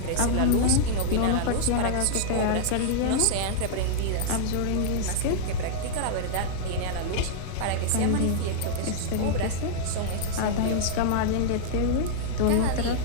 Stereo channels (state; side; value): different; both; correlation -0.02